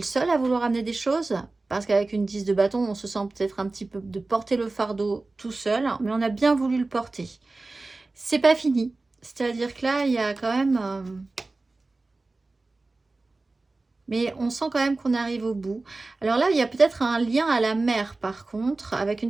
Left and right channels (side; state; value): left; quieter; 3.3 dB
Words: seul à vouloir amener des choses, parce qu'avec une 10 de bâton, on se sent peut-être un petit peu de porter le fardeau tout seul, mais on a bien voulu le porter. C'est pas fini. C'est-à-dire que là, il y a quand même... mais on sent quand même qu'on arrive au bout. Alors là, il y a peut-être un lien à la mer, par contre, avec